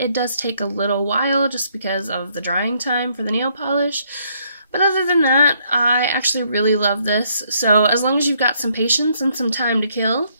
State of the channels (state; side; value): inverted; both; correlation -0.69